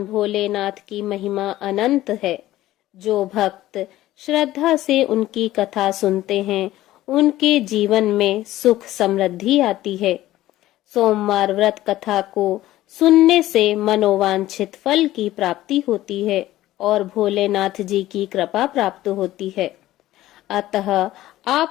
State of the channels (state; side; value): quieter; right; 15.2 dB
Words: भोलेनाथ की महिमा अनंत है। जो भक्त श्रद्धा से उनकी कथा सुनते हैं, उनके जीवन में सुख समृद्धि आती है। सोमवार व्रत कथा को सुनने से मनोवांछित फल की प्राप्ति होती है और भोलेनाथ जी की कृपा प्राप्त होती है। अतः